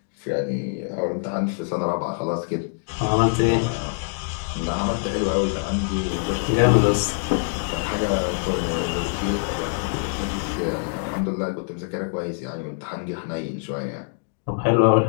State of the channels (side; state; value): right; silent; digital silence